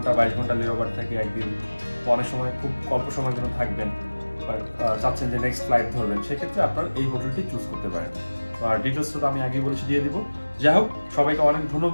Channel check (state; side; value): inverted; both; correlation -1.00